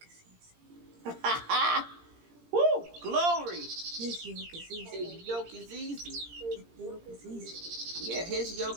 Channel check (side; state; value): left; late; 17 ms